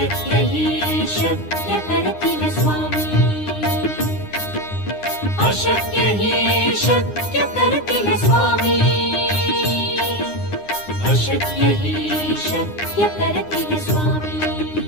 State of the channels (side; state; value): right; late; 9.8 ms